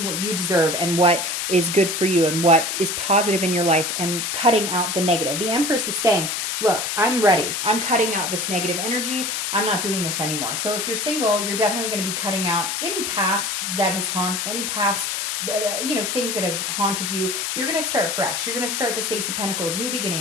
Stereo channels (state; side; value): noise; left; hiss, 1 dB below the sound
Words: what you deserve and what is good for you and what is positive in your life and cutting out the negative. The Empress is saying, look, I'm ready. I'm cutting out this negative energy. I'm not doing this anymore. So if you're single, you're definitely going to be cutting out any past that has any past things that have haunted you. You're going to start fresh. You're going to start the Ace of Pentacles, new